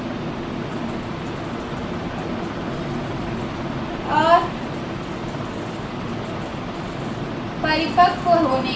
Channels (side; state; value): both; identical; correlation 1.00